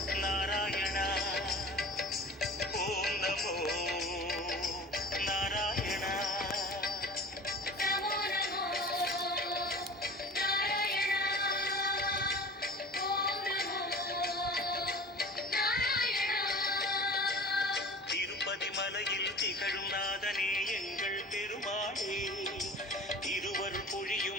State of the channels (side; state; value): both; normal; correlation 0.39